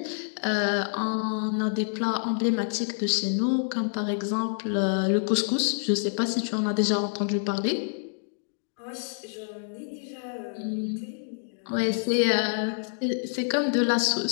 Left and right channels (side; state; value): right; silent; digital silence